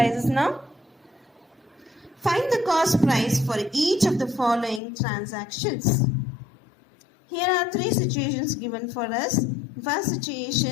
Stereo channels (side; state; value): right; drops out; at 4.8 s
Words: now. Find the cost price for each of the following transactions. Here are three situations given for us. First